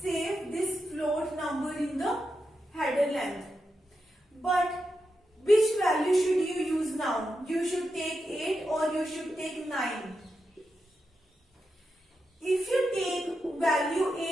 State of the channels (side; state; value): both; normal; correlation 0.87